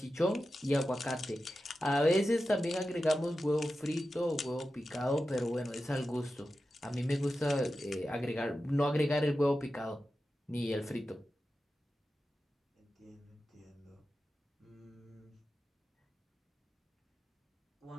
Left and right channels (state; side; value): normal; both; correlation 0.92